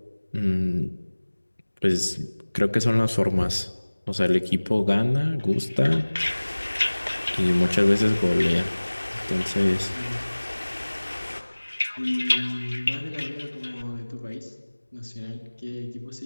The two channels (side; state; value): both; inverted; correlation -1.00